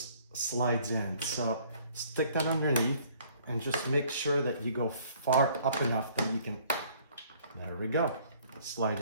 slides in. So stick that underneath and just make sure that you go far up enough that you can, there we go, slide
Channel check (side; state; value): both; inverted; correlation -0.58